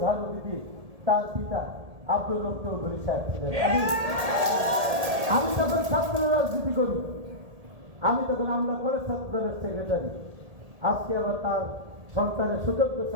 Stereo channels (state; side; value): late; left; 1.7 ms